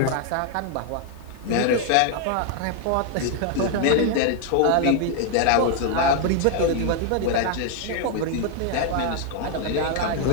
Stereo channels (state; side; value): different; both; correlation 0.00